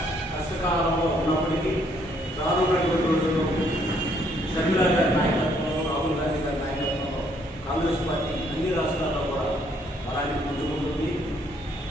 కష్టకాలంలో ఉన్నప్పటికీ రానున్నటువంటి రోజుల్లో షర్మిలా గారి నాయకత్వంలో, రాహుల్ గాంధీ గారి నాయకత్వంలో కాంగ్రెస్ పార్టీ అన్ని రాష్ట్రాల్లో కూడా అలాగే పుంజుకుంటుంది.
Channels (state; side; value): normal; both; correlation 0.67